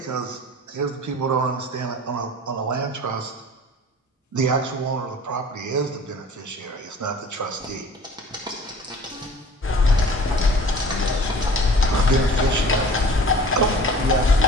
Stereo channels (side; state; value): both; normal; correlation 0.45